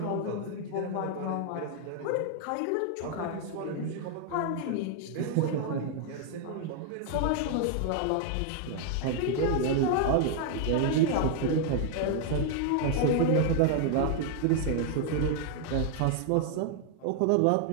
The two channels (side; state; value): both; different; correlation 0.00